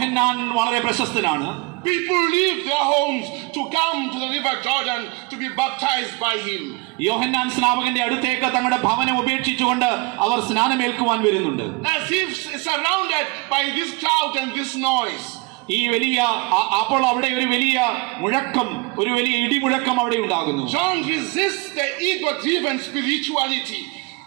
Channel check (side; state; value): left; quieter; 27.7 dB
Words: വളരെ പ്രശസ്തനാണ്. People leave their homes to come to the river Jordan to be baptized by him. യോഹന്നാൻ സ്നാപകന്റെ അടുത്തേക്ക് തങ്ങളുടെ ഭവനം ഉപേക്ഷിച്ചുകൊണ്ട് അവർ സ്നാനമേൽക്കുവാൻ വരുന്നുണ്ട്. As if surrounded by this crowd and this noise. ഈ വലിയ അപ്പോൾ അവിടെ ഒരു വലിയ മുഴക്കം, ഒരു വലിയ ഇടിമുഴക്കം അവിടെ ഉണ്ടാകുന്നു. John resists the ego-driven spirituality.